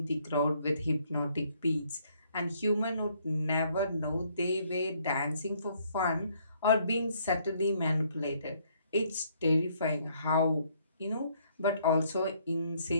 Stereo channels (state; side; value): inverted; both; correlation -0.67